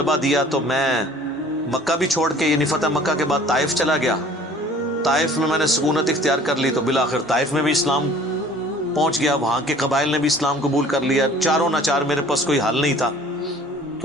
دیا تو میں مکہ بھی چھوڑ کے، یعنی فتح مکہ کے بعد طائف چلا گیا، طائف میں نے سکونت اختیار کر لی، تو بالآخر طائف میں بھی اسلام پہنچ گیا، وہاں کے قبائل نے بھی اسلام قبول کر لیا، چاروں ناچار میرے پاس کوئی حل نہیں تھا،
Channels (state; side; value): normal; both; correlation 0.50